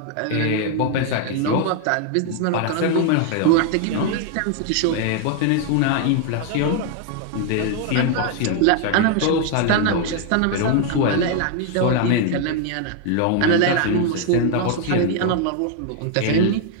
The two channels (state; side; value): different; both; correlation 0.00